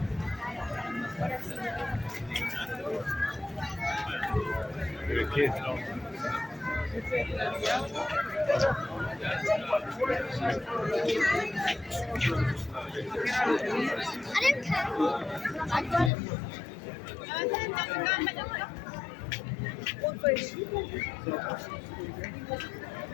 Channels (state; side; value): drops out; right; at 16.1 s